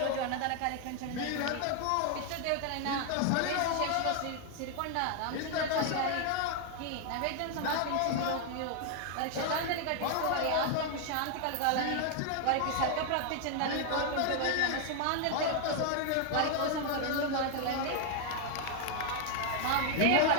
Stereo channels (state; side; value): different; both; correlation 0.00